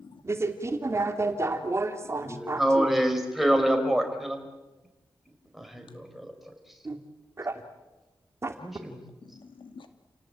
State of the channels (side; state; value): both; normal; correlation 0.91